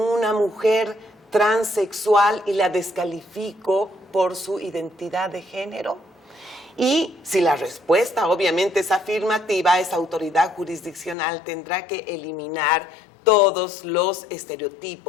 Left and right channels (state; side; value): drops out; right; at 11.2 s